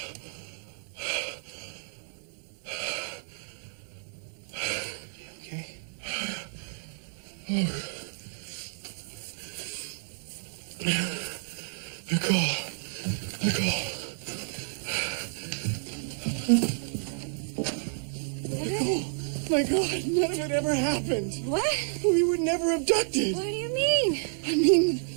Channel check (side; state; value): left; silent; 58 dB below the other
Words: Okay. Nicole. My God, none of it ever happened. What? We were never abducted. What do you mean? I mean,